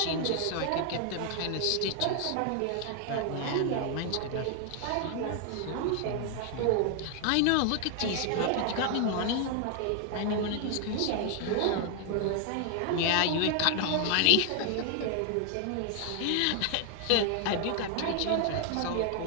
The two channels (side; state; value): both; different; correlation 0.00